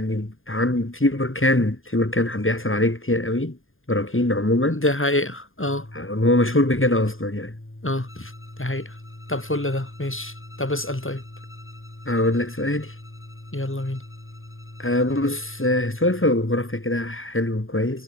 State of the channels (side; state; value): right; late; 0.59 ms